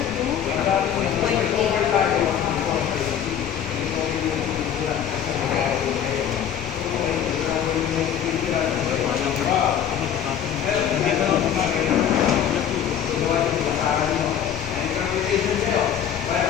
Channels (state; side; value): quieter; right; 8.9 dB